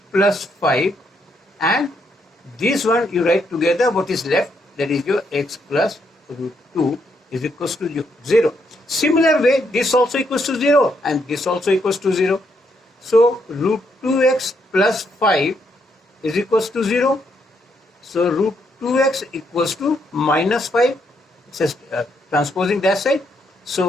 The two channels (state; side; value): normal; both; correlation 0.76